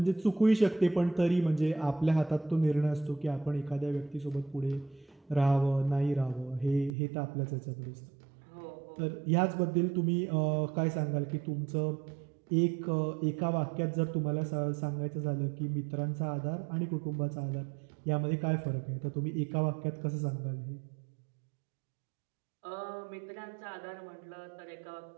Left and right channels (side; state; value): left; drops out; at 7.0 s